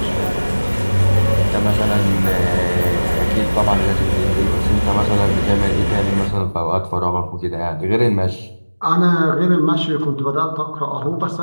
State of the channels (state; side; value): inverted; both; correlation -1.00